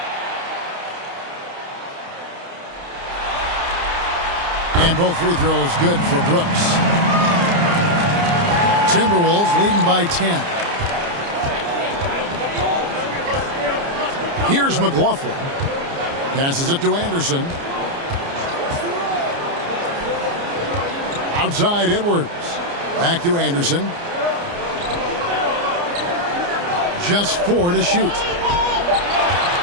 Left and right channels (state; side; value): late; left; 29 ms